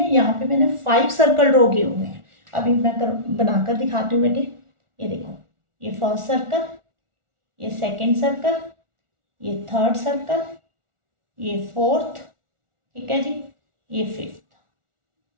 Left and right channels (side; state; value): left; late; 1.4 ms